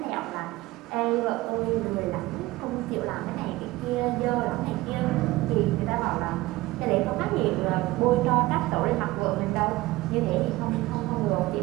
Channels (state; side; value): quieter; left; 18.9 dB